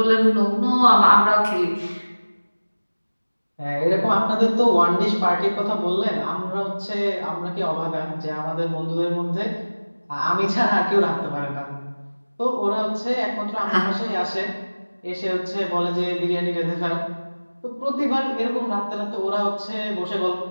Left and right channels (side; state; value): both; inverted; correlation -1.00